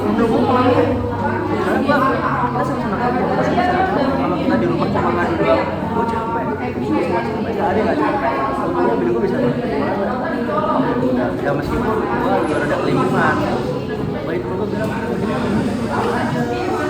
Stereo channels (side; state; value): both; identical; correlation 1.00